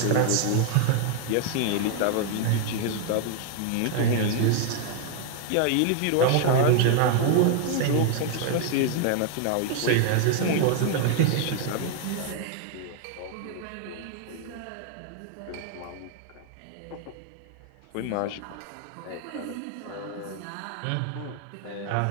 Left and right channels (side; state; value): both; different; correlation 0.00